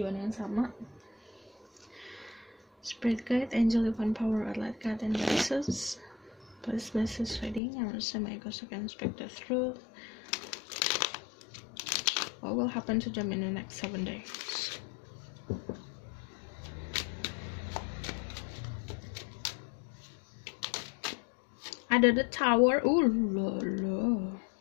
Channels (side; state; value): right; drops out; at 7.6 s